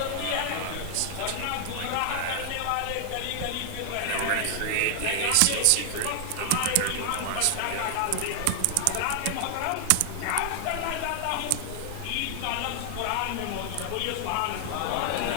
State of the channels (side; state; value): both; different; correlation 0.00